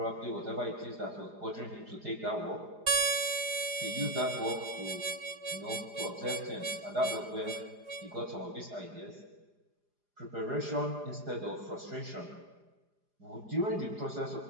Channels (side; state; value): left; late; 4.9 ms